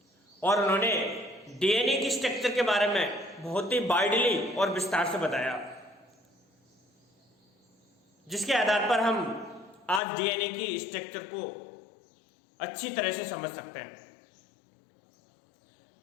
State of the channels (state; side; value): drops out; right; at 10.0 s